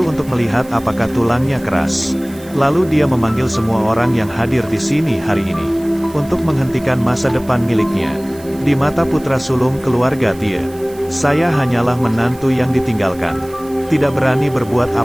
untuk melihat apakah tulangnya keras. Lalu dia memanggil semua orang yang hadir di sini hari ini untuk menghentikan masa depan miliknya. Di mata putra sulung keluarga Tie, saya hanyalah menantu yang ditinggalkan. Tidak berani berbuat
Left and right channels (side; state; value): right; noise; hiss, 22 dB below the sound